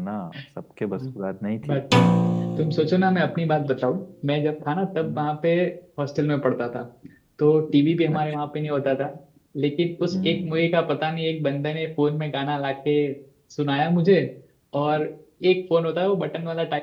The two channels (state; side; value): identical; both; correlation 1.00